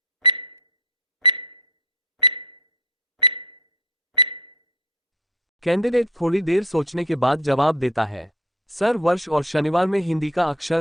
कैंडिडेट थोड़ी देर सोचने के बाद जवाब देता है, सर वर्ष और शनिवार में हिंदी का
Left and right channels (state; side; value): normal; both; correlation 0.41